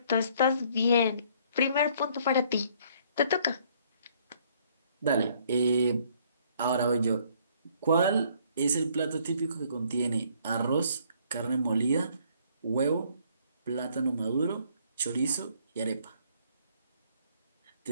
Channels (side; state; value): both; inverted; correlation -0.62